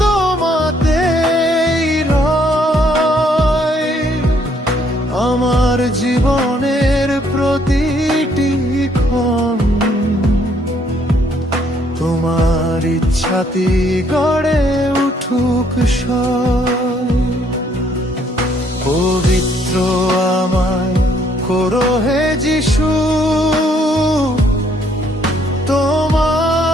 তোমাতেই রয়, আমার জীবনের প্রতিটি ক্ষণ তোমার ইচ্ছাতে গড়ে উঠুক সয়। পবিত্র আমায় করো হে যিশু,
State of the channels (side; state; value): both; normal; correlation 0.67